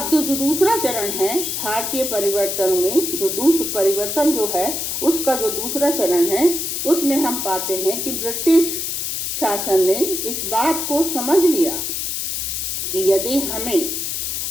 जो दूसरा चरण है भारतीय परिवर्तन में, परिवर्तन जो है उसका जो दूसरा चरण है, उसमें हम पाते हैं कि ब्रिटिश शासन ने इस बात को समझ लिया कि यदि हमें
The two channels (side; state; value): left; noise; hiss, 2 dB below the sound